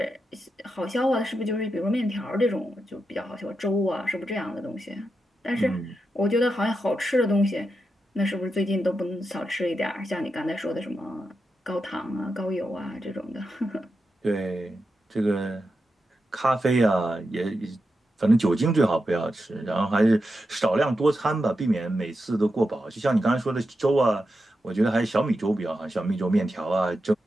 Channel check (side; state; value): both; normal; correlation 0.88